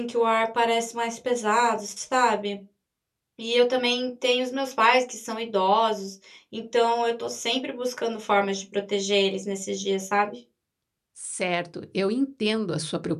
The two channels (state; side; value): identical; both; correlation 1.00